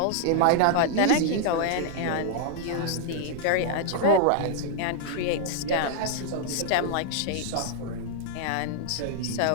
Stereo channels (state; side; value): different; both; correlation -0.01